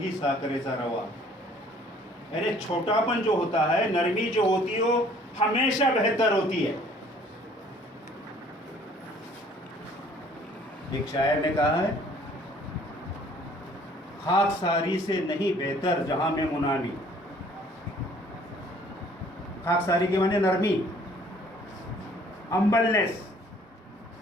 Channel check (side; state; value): both; normal; correlation 0.56